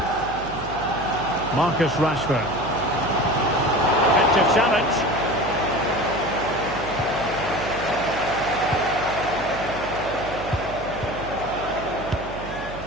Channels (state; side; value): noise; right; hum, 13 dB below the sound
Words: Marcus Rashford. Effective challenge.